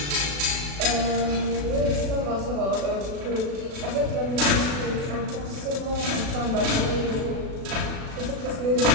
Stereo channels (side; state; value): left; late; 36 ms